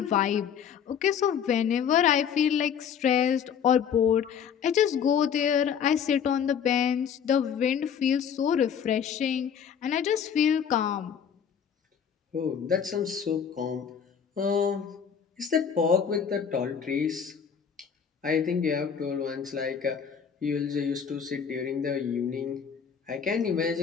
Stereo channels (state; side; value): quieter; right; 7.6 dB